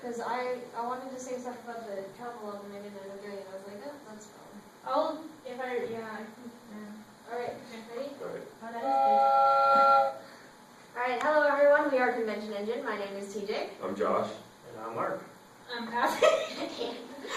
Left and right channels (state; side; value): identical; both; correlation 1.00